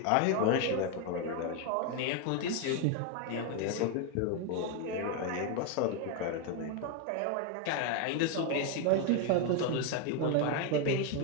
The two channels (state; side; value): different; both; correlation 0.01